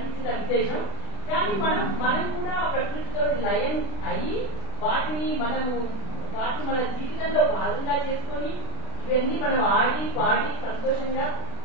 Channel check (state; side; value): late; right; 36 ms